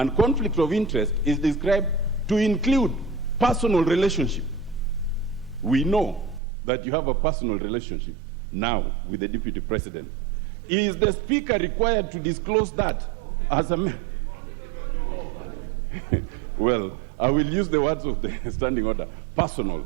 conflict of interest is described to include personal relationship. We know that you have a personal relationship now with the Deputy President. Is the Speaker required to disclose that as a man? Well, I will use the words of the standing order, personal,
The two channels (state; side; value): drops out; left; at 6.4 s